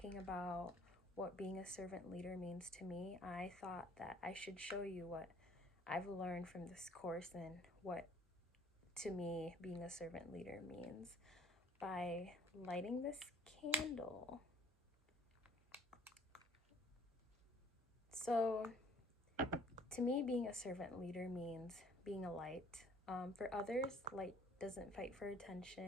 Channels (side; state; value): both; normal; correlation 0.56